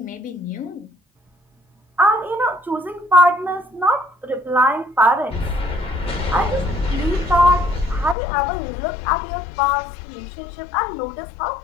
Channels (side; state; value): right; drops out; at 8.2 s